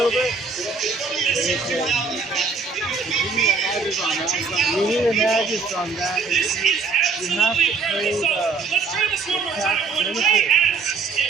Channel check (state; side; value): quieter; left; 4.6 dB